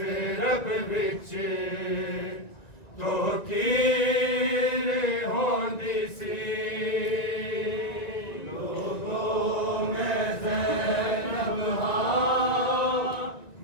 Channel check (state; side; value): late; right; 1.9 ms